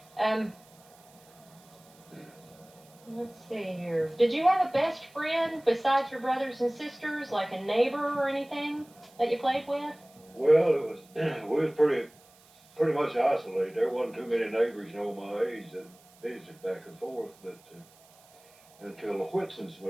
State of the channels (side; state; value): right; noise; hiss, 27 dB below the sound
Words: Let's see here. Did you have a best friend besides your brothers and sisters, like a neighbor or anything that you played with? Well, we was pretty much isolated. There wasn't too many neighbors, you know, my age that visited back and forth, but until the Whitsons